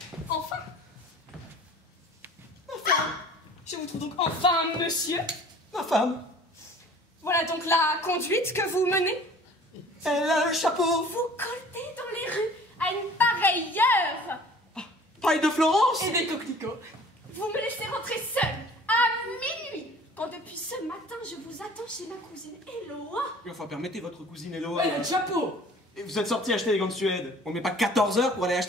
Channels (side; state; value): both; normal; correlation 0.48